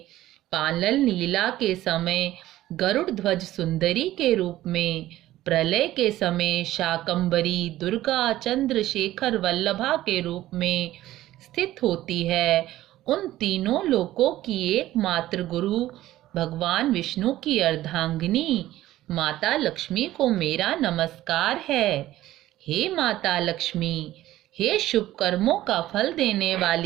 पालन लीला के समय गरुड़ ध्वज सुंदरी के रूप में, प्रलय के समय शाकंभरी दुर्गा चंद्रशेखर वल्लभा के रूप में स्थित होती है, उन तीनों लोकों की एकमात्र गुरु भगवान विष्णु की अर्धांगिनी माता लक्ष्मी को मेरा नमस्कार है। हे माता लक्ष्मी, हे शुभ कर्मों का फल देने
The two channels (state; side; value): quieter; left; 14.9 dB